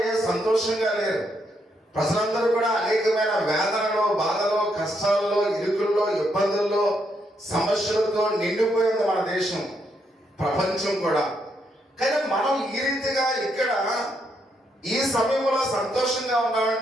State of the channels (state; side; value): normal; both; correlation 0.77